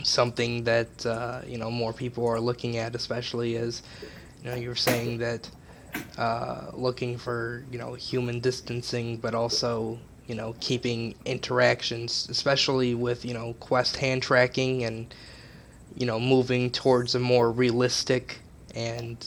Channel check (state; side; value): identical; both; correlation 1.00